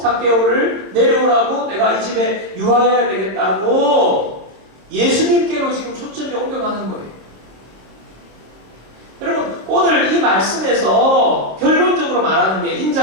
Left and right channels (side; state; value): left; late; 27 ms